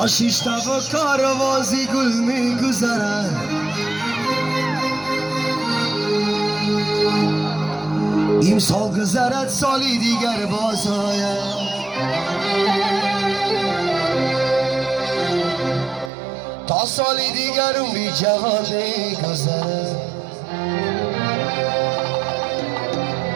شش تا و کاروازی گل میگذرد امسال گذرد سالی دیگر باز آید تا سالی دیگر عمری جوان میگذرد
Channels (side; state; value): left; drops out; at 16.1 s